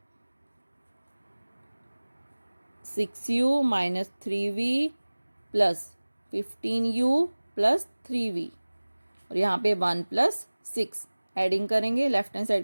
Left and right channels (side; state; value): both; inverted; correlation -1.00